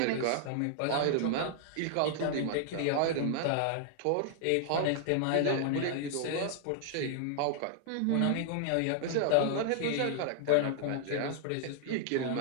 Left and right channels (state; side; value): different; both; correlation 0.00